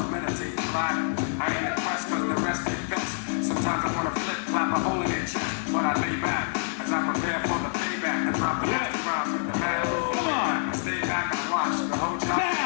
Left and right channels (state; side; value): silent; right; digital silence